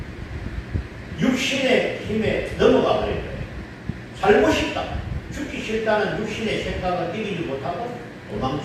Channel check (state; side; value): identical; both; correlation 1.00